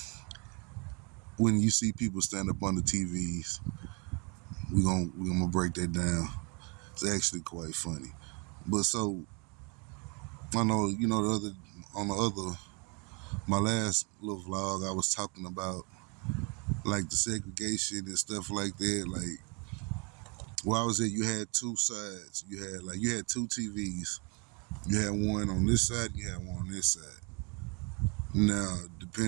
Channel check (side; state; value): left; quieter; 32.6 dB